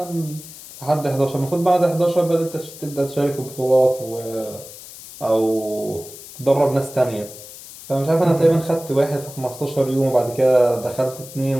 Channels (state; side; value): noise; left; hiss, 16 dB below the sound